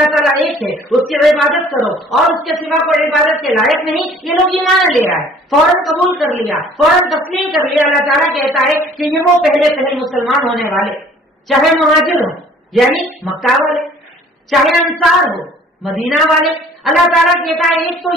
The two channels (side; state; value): both; normal; correlation 0.54